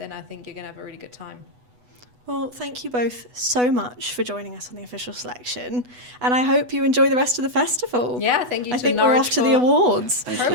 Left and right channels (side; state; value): left; late; 8.1 ms